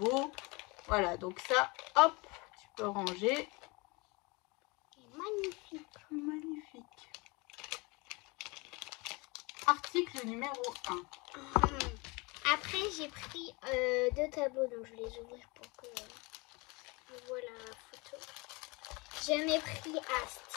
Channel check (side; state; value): right; quieter; 26.7 dB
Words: Voilà, donc ça, hop, tu peux ranger. Il est magnifique. Magnifique. Article numéro 1. Après, j'ai pris 2 tableaux, donc je vais les ouvrir pour que je vois la photo. J'en ai pris un